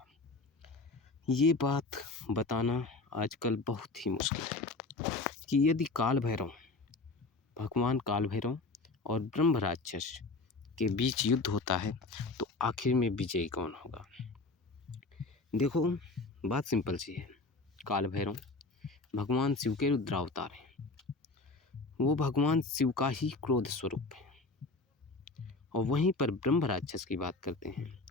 ये बात बताना आजकल बहुत ही मुश्किल है कि यदि भगवान काल भैरव और ब्रह्म राक्षस के बीच युद्ध होता है तो आखिर में विजयी कौन होगा। देखो, बात सिंपल सी है। काल भैरव भगवान शिव के रुद्रावतार हैं। वो भगवान शिव का ही क्रोध स्वरूप है। और वहीं पर ब्रह्म राक्षस की बात करते हैं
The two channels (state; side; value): quieter; right; 3.5 dB